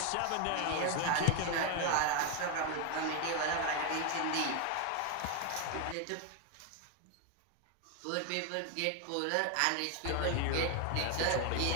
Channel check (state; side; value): different; both; correlation 0.01